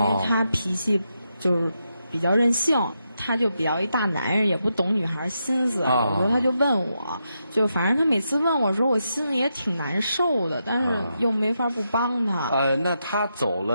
他脾气就是比较任性，他就比较一大男人，也不懂女孩心思。有时候他就问我，就反正他每次问我的时候，我心里也挺难受的，但是又没法不帮他。那他走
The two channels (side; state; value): both; inverted; correlation -0.84